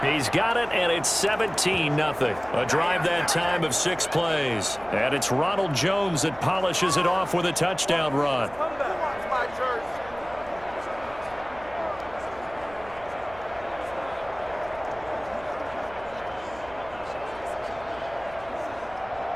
He's got it, and it's 17-0. A drive that time of 6 plays. And it's Ronald Jones that polishes it off with a touchdown run.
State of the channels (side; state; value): right; noise; hum, 20 dB below the sound